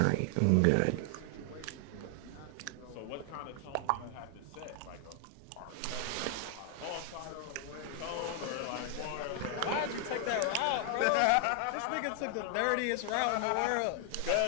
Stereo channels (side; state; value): both; different; correlation 0.00